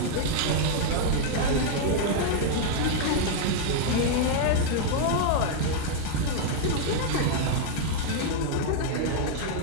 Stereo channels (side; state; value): both; different; correlation -0.01